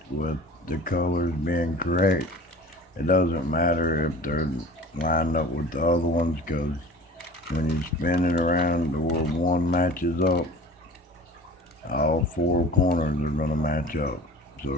with the colors being correct, it doesn't matter if they're lined up with the other ones because when you spin it around to where one matches up, all four corners are going to match up.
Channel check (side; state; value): both; normal; correlation 0.41